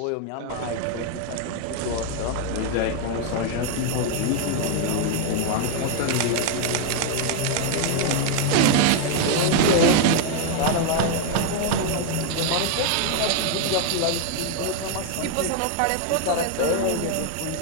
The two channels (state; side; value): different; both; correlation 0.00